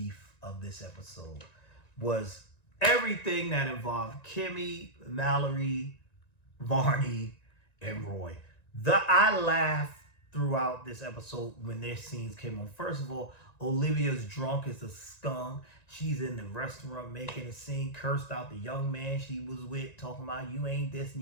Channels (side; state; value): right; late; 1.9 ms